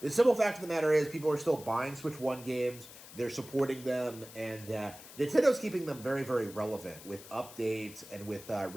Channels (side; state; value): left; noise; hiss, 17 dB below the sound